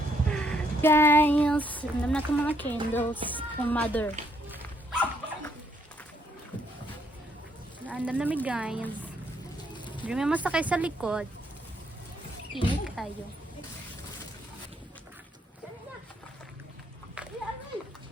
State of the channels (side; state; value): both; normal; correlation 0.71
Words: Guys, andam na itong mga candles from mother. Andam na mi guys. Hindi may masakay sa likod. Init kayo.